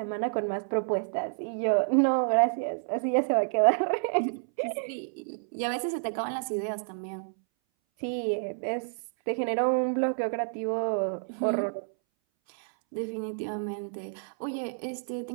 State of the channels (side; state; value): left; silent; 58 dB below the other